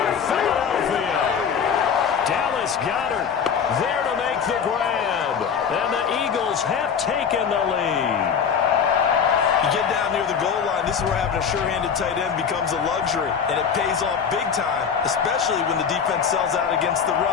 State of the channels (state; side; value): quieter; right; 7.0 dB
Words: Philadelphia. Dallas Goedert there to make the grab. And the Eagles have taken the lead. You get down near the goal line, this is where having a sure-handed tight end becomes a luxury, and it pays off big time, especially when the defense sells out against the